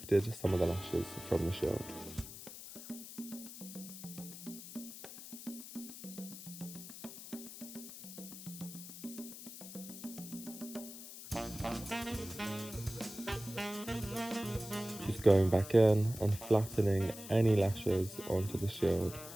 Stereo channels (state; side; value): noise; left; hiss, 12 dB below the sound